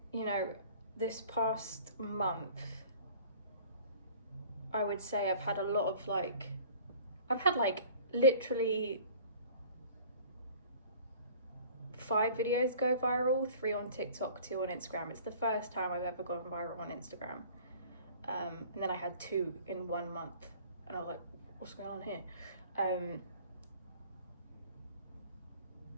You know, this past month, I would say I've had literally 5 videos go viral, 3 on TikTok, 2 on Instagram. It's the first time I've ever gone viral on Instagram. And then I had 2 in 1 month, and I was like, what's going on here?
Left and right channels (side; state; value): both; inverted; correlation -0.48